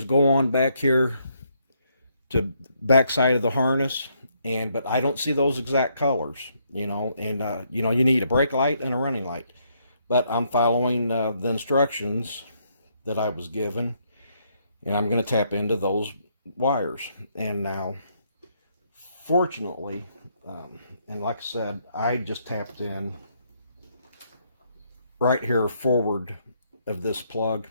go on back here to back side of the harness, but I don't see those exact colors, you know, and you know, you need a brake light and a running light. But I'm following the instructions that I was given, and I'm going to tap into those wires. And now, fortunately, and like I said, I just tapped in right here forward of this plug.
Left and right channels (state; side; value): inverted; both; correlation -0.73